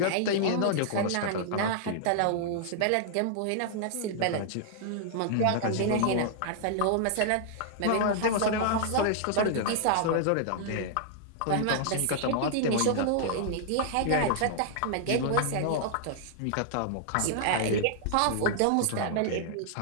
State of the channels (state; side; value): different; both; correlation -0.01